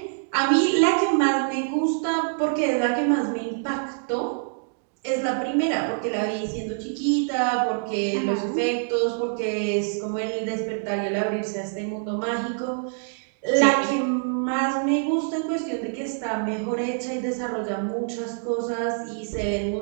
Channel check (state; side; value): silent; left; digital silence